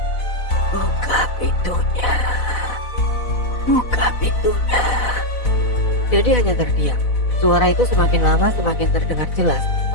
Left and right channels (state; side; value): late; right; 4.0 ms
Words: "Buka pintunya, buka pintunya." Dedi hanya terdiam. Suara itu semakin lama semakin terdengar jelas